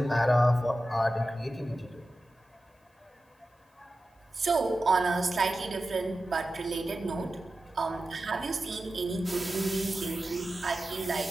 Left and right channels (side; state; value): both; normal; correlation 0.93